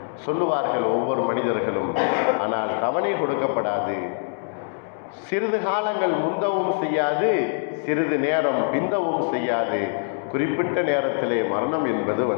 சொல்லுவார்கள் ஒவ்வொரு மனிதர்களும். ஆனால் தவணை கொடுக்கப்படாது. சிறிது காலங்கள் முந்தவும் செய்யாது, சிறிது நேரம் பிந்தவும் செய்யாது. குறிப்பிட்ட நேரத்திலே மரணம் என்பது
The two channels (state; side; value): silent; right; 61 dB below the other